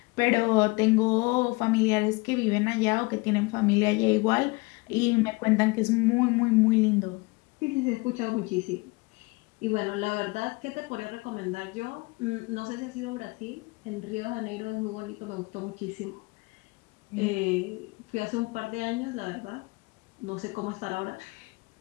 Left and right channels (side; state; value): right; quieter; 25.8 dB